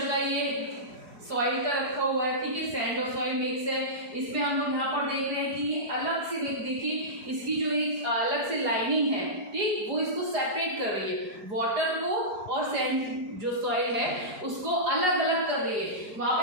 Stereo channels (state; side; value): late; left; 4.9 ms